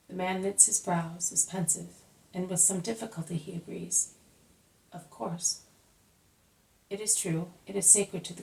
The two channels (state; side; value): identical; both; correlation 1.00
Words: The man knits his brows, is pensive, and with some difficulty he agrees. "Of course. It is true. It is sacred to the